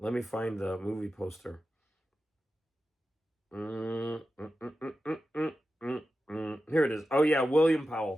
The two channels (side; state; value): both; normal; correlation 0.92